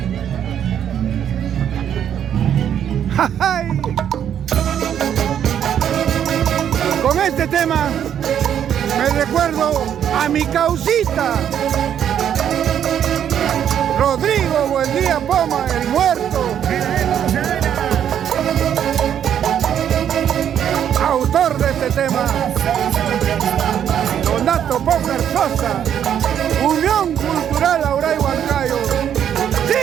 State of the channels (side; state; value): left; quieter; 9.4 dB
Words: ¡Ay! Con este tema me recuerdo a mi causita, Rodrigo Buendía Poma, el muerto, autor de este tema. Donato Pócar Sosa, Unión Cultural Auray Huancayo,